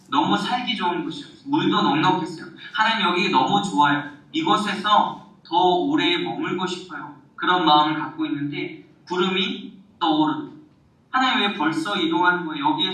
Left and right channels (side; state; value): both; identical; correlation 1.00